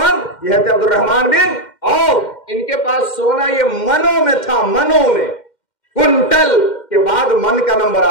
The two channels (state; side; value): late; right; 2.1 ms